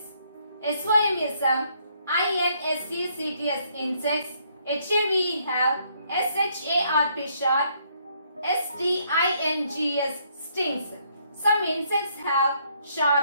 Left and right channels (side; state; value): both; inverted; correlation -0.69